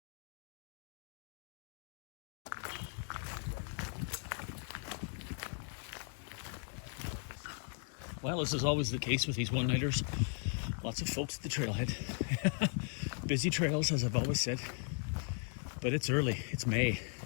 Well, as is always the case with these one-nighters, lots of folks at the trailhead. Busy trails, as I've always said. But it's early, it's May,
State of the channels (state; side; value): silent; right; 53 dB below the other